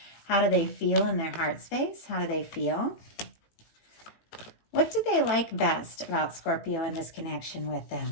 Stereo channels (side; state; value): right; late; 18 ms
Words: How do they feel in their heart space? How do they feel? What do they like best about Scorpio and this connection with